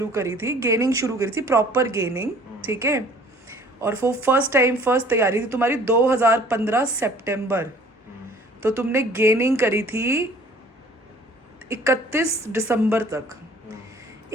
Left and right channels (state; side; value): normal; both; correlation 0.53